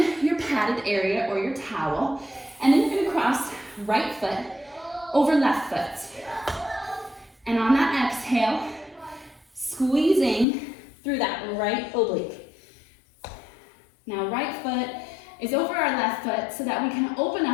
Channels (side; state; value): right; drops out; at 10.5 s